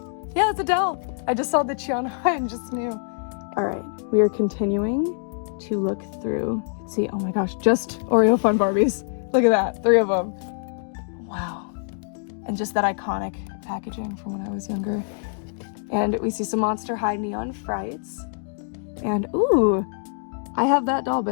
Yeah, it's Adele. I just saw the Chiana and just knew. All right, we are continuing to look through. Let's see, oh my gosh, just Oreo Fun Barbies. Look at that, 3 of them. Wow. And just that iconic packaging from when I was younger. And we see some Monster High Neon Frights. And ooh, I have that doll,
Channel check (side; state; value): right; silent; digital silence